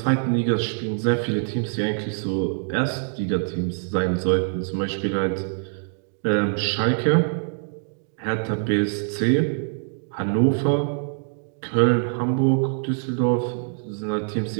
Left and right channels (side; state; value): left; silent; digital silence